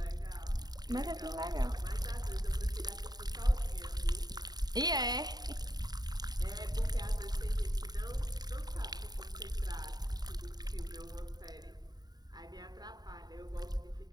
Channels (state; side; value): late; left; 0.19 ms